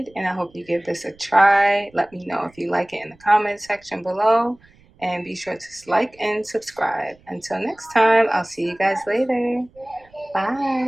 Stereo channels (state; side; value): noise; right; rumble, 29 dB below the sound